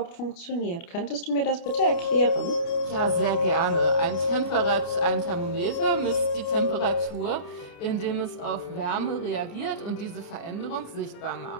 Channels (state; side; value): late; right; 29 ms